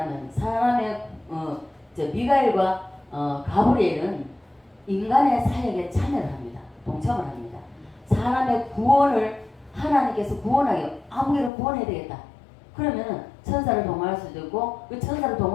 사람의 미가엘과 가브리엘은 인간의 사역에 참여를 합니다. 동참을 합니다. 사람의 구원을 하나님께서 구원하게 아무개를 구원해야 되겠다. 그러면은 천사를 동원할 수도 있고 그 천사를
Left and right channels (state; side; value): drops out; right; at 11.5 s